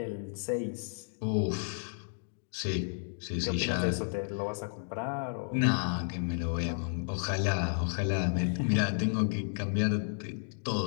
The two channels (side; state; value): right; silent; digital silence